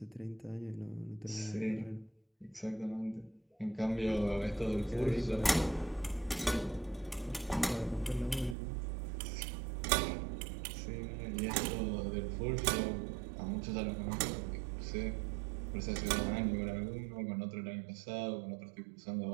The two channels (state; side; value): drops out; left; at 8.6 s